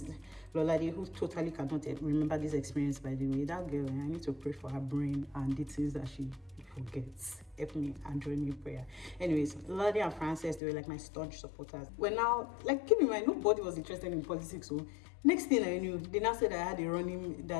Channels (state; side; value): drops out; right; at 10.6 s